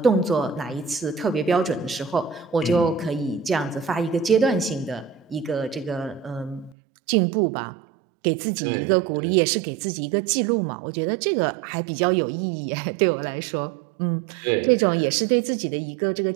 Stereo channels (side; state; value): left; drops out; at 6.8 s